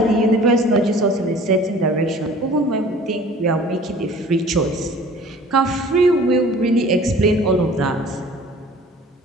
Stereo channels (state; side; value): normal; both; correlation 0.47